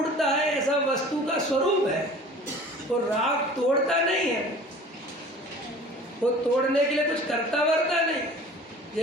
है। ऐसा वस्तु का स्वरूप है। वो राग तोड़ता नहीं है, वो तोड़ने के लिए कुछ करता वरता नहीं।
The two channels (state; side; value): normal; both; correlation 0.44